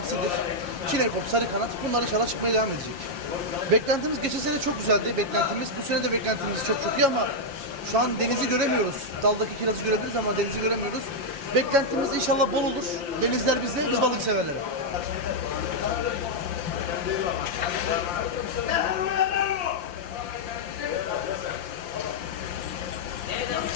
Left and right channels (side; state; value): left; late; 5.8 ms